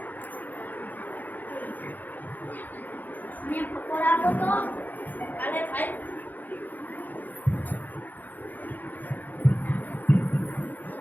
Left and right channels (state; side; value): late; right; 0.084 ms